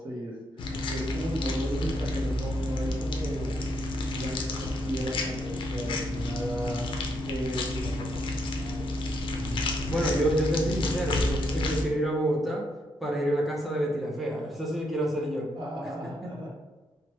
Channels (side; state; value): both; normal; correlation 0.76